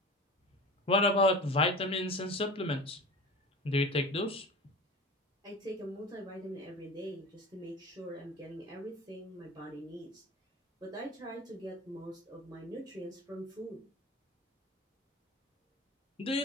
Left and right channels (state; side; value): normal; both; correlation 0.34